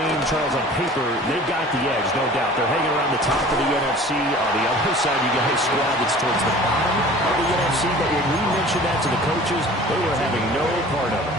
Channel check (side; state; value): both; normal; correlation 0.45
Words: Charles, on paper, they've got the edge, no doubt. They're hanging around the top of the NFC. On the other side, you got a squad that's towards the bottom of the NFC. But when we mentioned that to the coaches, they were having no part of